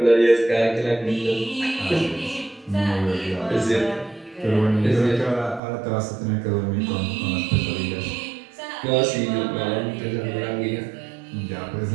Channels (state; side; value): drops out; left; at 5.6 s